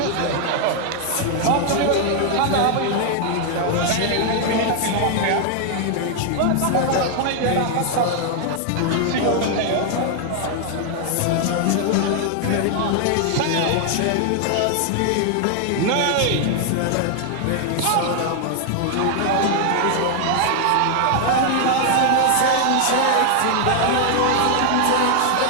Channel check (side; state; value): both; different; correlation 0.00